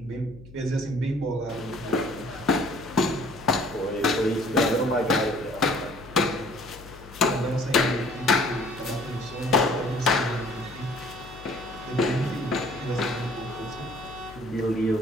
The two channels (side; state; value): left; noise; hum, 19 dB below the sound